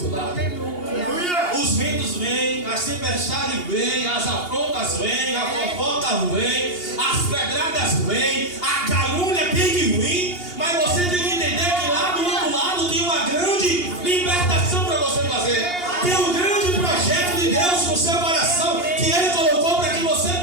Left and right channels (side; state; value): right; late; 2.8 ms